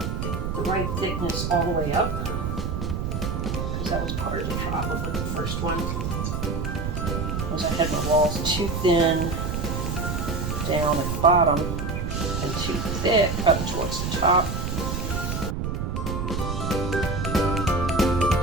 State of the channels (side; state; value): right; noise; rumble, 2 dB below the sound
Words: the right thickness all the way up, because that was part of the problem with the first one. Was I had my walls too thin down at the bottom and too thick up towards the top.